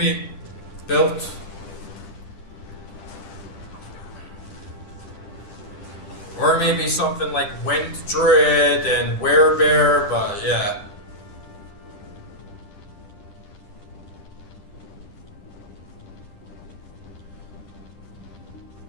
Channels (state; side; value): late; right; 10 ms